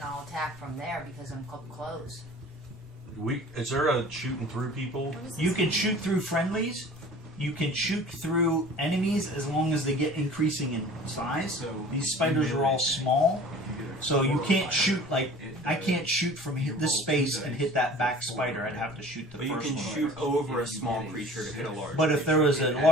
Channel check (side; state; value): both; normal; correlation 0.44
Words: I'll attack from there because I'm close. Is there a shooting through people? You can shoot through friendlies. You can shoot through enemies as long as they get increasing in size. So These spiders are all small, so you can't shoot like I can't shoot from this space and hit that back spider. I'd have to shoot the But you first can one. shoot over a small creature to hit a large. But if there was a